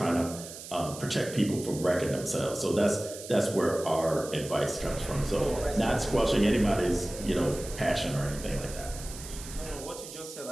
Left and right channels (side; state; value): right; noise; hiss, 13 dB below the sound